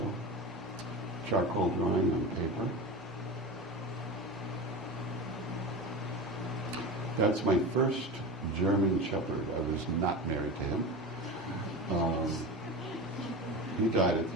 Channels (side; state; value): both; normal; correlation 0.27